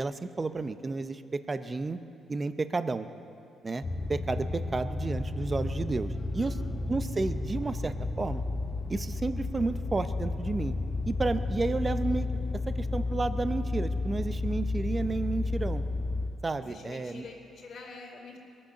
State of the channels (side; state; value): both; normal; correlation 0.91